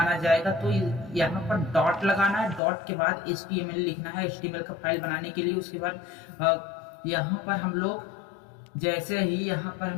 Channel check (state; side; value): drops out; right; at 2.6 s